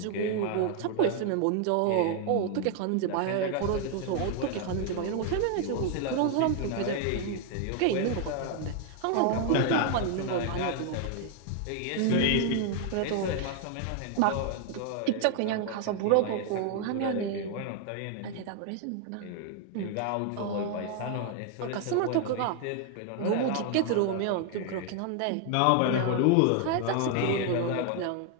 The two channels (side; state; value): both; different; correlation 0.00